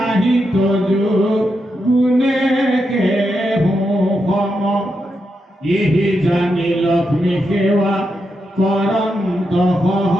তজু গুণে কেহোম ইহি জানি লক্ষ্মী সেৱা কৰন্ত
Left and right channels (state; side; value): normal; both; correlation 0.85